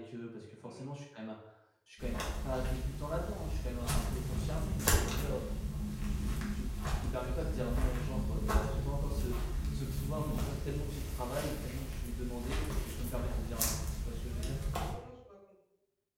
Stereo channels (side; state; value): both; identical; correlation 1.00